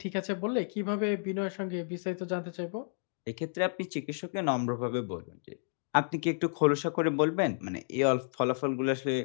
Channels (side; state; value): right; silent; digital silence